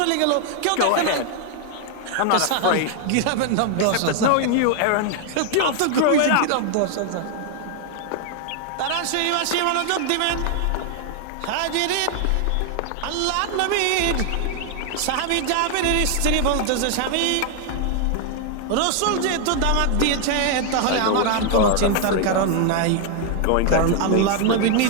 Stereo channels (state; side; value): different; both; correlation 0.00